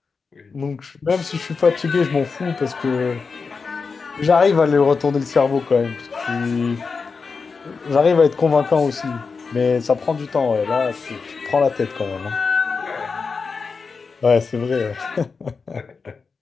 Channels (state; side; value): quieter; right; 4.9 dB